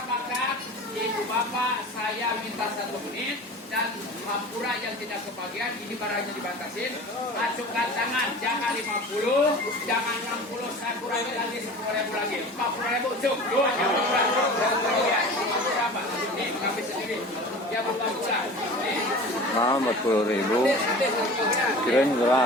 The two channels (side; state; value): both; normal; correlation 0.38